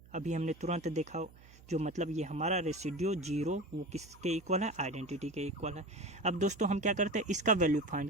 अभी हमने तुरंत देखा, जो मतलब ये हमारा रेसिड्यू 0 वो किसके इक्वल है, आइडेंटिटी के इक्वल है। अब दोस्तों हम क्या करते हैं, इसका वैल्यू फाइंड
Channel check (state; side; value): noise; right; hum, 23 dB below the sound